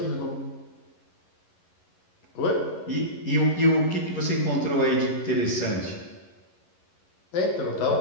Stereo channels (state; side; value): late; right; 11 ms